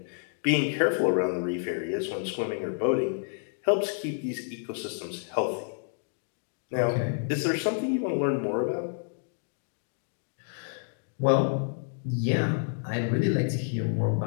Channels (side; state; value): right; silent; digital silence